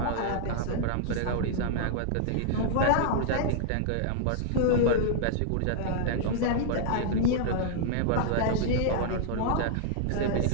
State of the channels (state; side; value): different; both; correlation -0.01